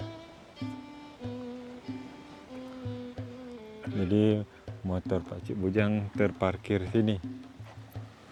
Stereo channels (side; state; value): both; identical; correlation 1.00